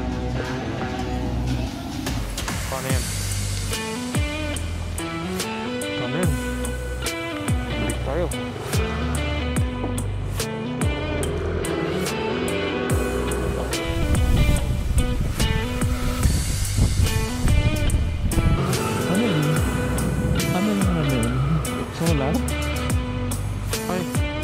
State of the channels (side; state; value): both; identical; correlation 1.00